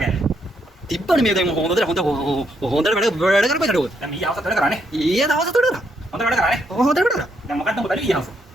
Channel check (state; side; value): normal; both; correlation 0.76